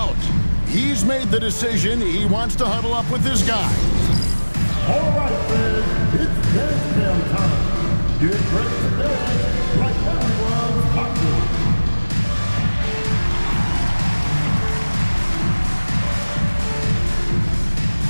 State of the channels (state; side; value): inverted; both; correlation -1.00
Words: He's made the decision. He wants to huddle up with his guy. All right, fans, it's dance jam time. Get ready to dance like everyone's hot.